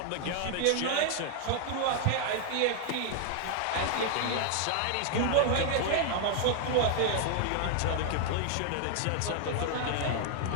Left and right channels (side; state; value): both; different; correlation 0.00